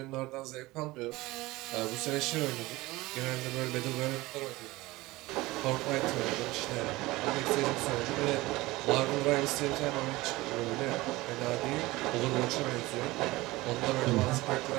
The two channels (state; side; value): quieter; left; 20.0 dB